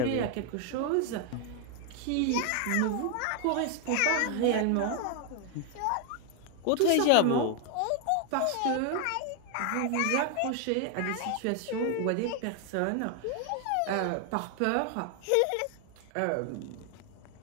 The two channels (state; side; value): different; both; correlation 0.01